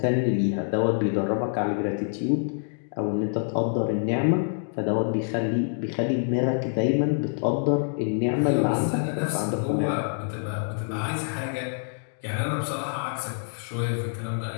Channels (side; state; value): right; silent; digital silence